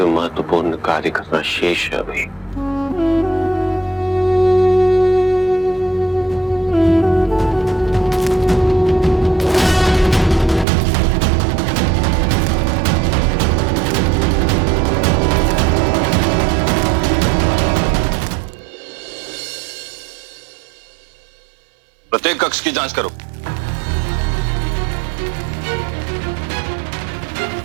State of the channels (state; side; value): drops out; left; at 10.7 s